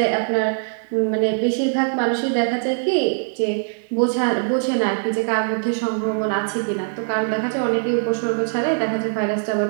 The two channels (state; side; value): silent; left; digital silence